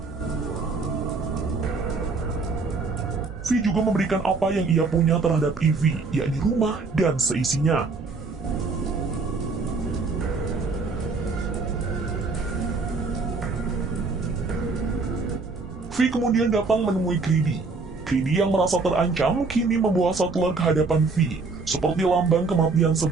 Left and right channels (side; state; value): left; quieter; 4.1 dB